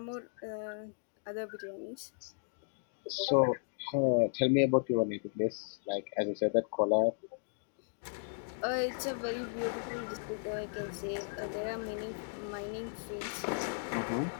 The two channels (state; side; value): silent; right; digital silence